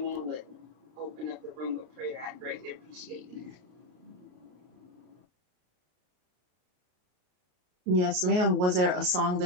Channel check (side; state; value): left; late; 33 ms